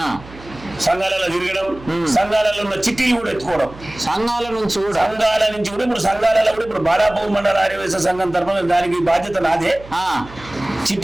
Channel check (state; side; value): noise; right; hum, 19 dB below the sound